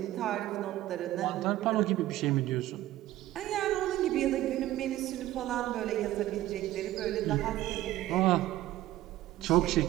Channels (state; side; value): quieter; left; 15.0 dB